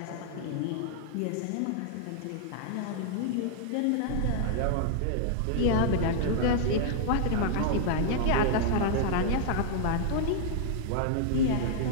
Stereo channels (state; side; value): different; both; correlation -0.01